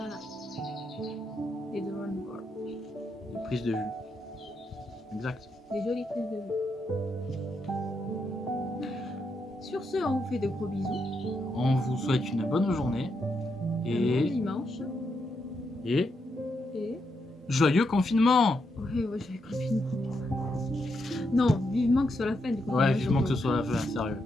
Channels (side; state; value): both; normal; correlation 0.81